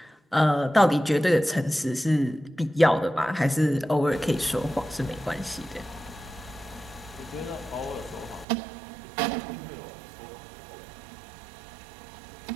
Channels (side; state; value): left; drops out; at 8.5 s